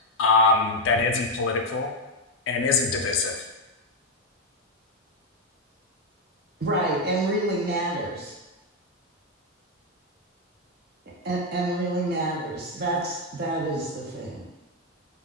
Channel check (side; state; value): both; normal; correlation 0.04